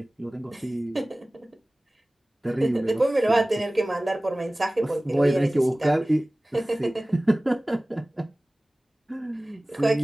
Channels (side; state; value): both; normal; correlation 0.98